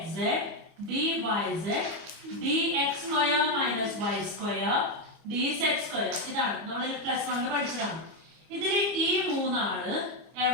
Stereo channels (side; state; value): left; late; 25 ms